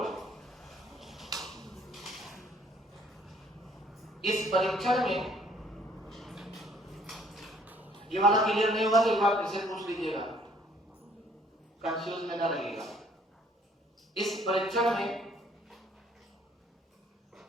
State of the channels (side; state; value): both; normal; correlation 0.61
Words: इस परीक्षण में ये वाला क्लियर नहीं हुआ तो एक बार फिर से पूछ लीजिएगा, कंफ्यूज में ना रहिएगा। इस परीक्षण में